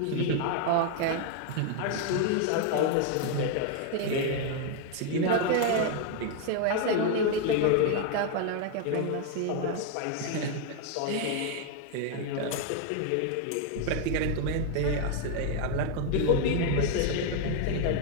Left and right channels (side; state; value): both; different; correlation 0.00